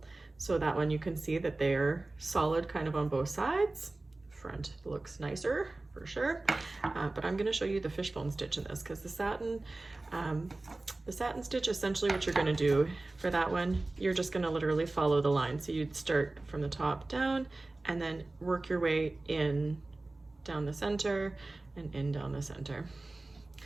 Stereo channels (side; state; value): left; quieter; 3.0 dB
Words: So that one you can see that they're solid kind of on both sides. Front looks nicer for sure. But I'm going to show you the fishbone stitch in this because the satin stitch, essentially what you're going to do for that one, you're just going to literally follow the line. So you'd start from the top down and then work your way in down the center and in down the center.